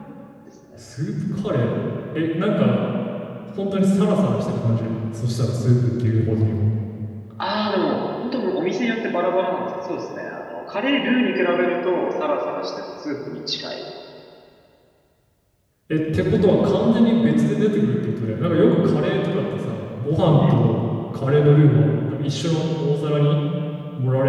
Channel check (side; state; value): both; identical; correlation 1.00